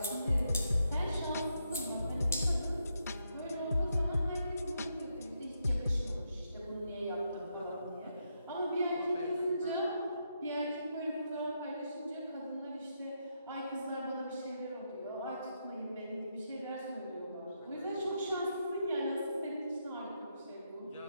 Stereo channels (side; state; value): both; inverted; correlation -0.81